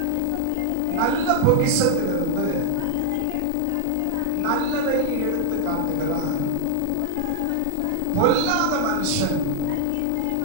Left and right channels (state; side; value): different; both; correlation 0.01